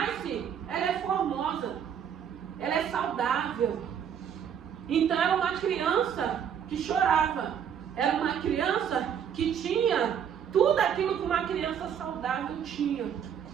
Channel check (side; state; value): left; quieter; 8.4 dB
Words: ela é formosa, ela é saudável. Então era uma criança que chorava, era uma criança que tinha tudo aquilo que uma criança saudável tinha.